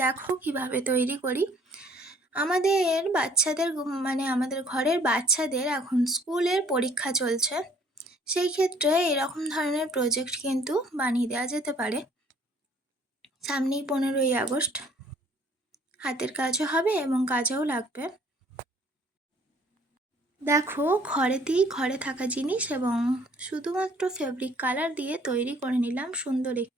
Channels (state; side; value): normal; both; correlation 0.58